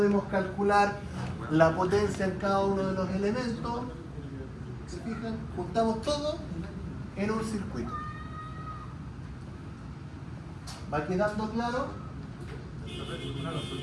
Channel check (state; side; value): identical; both; correlation 1.00